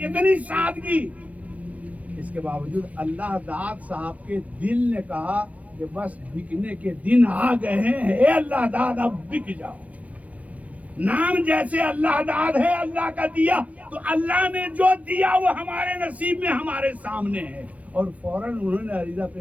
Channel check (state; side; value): late; left; 0.069 ms